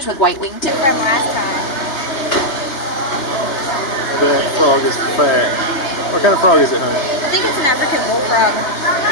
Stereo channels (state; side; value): late; right; 3.3 ms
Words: with white wingtips. That frog is fat. What kind of frog is it, honey? I think it's an African bullfrog.